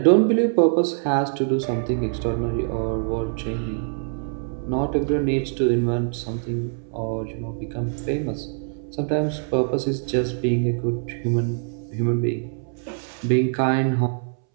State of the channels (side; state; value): left; silent; 63 dB below the other